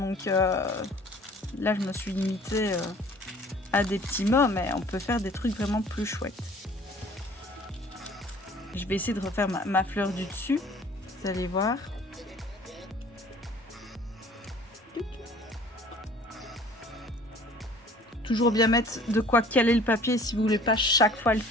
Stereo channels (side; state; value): both; normal; correlation 0.51